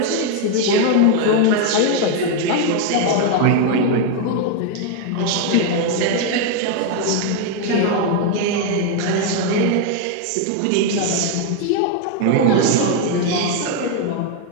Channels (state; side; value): different; both; correlation 0.01